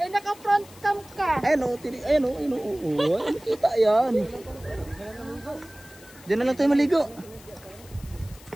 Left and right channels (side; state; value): left; noise; hiss, 22 dB below the sound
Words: naka-front cam ka. Ayun oh, tiri, ayun oh, oo. Ayun, kita yan. Diyan na lang tayo maligo.